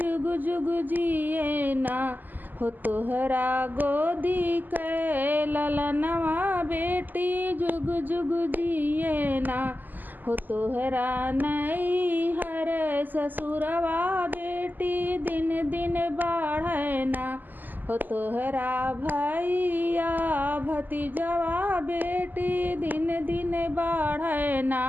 जुग जुग जिए ना हो तोहरा गोदी के ललनवा बेटी जुग जुग जिए ना हो तोहरा नैहर ससुरवा बेटी दिन दिन बढ़े ना हो तोहरा भैया भतीजवा बेटी दिन दिन बढ़े ना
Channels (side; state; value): left; late; 0.086 ms